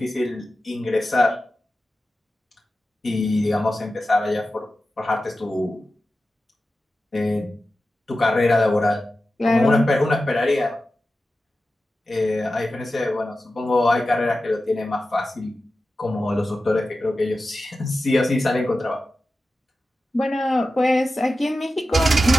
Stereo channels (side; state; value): both; normal; correlation 0.93